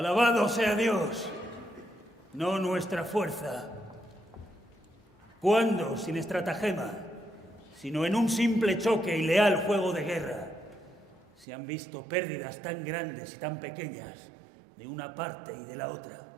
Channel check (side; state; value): left; drops out; at 11.5 s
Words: sea Dios, no nuestra fuerza. ¿Cuándo, sin estratagema, sino en un simple choque y leal juego de guerra, se han visto pérdidas tan grandes y tan pequeñas de una parte y de la otra?